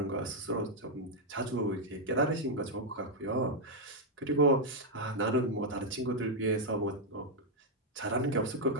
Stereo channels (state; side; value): normal; both; correlation -0.02